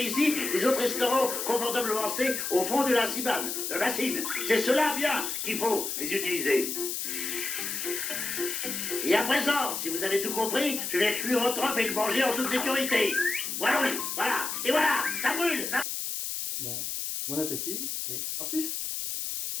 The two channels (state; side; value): noise; left; hiss, 3 dB below the sound